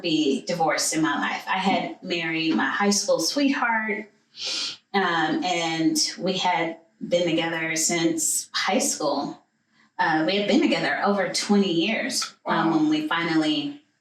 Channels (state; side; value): identical; both; correlation 1.00